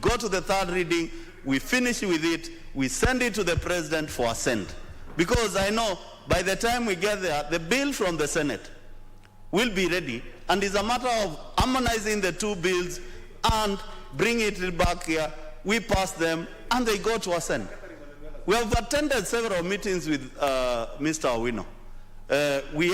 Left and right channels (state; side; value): identical; both; correlation 1.00